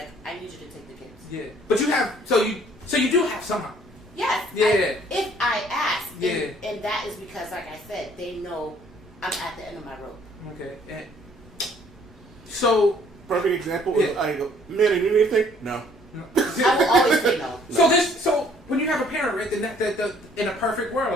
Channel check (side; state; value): both; normal; correlation 0.60